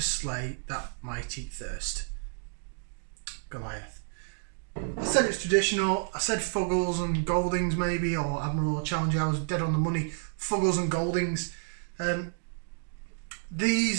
slay that mighty thirst. Goliath. I said it's traditional. I said Fuggles and Goldings maybe, or Admiral or Challenger. I was dead on the money. Fuggles and Goldings.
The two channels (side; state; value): left; silent; digital silence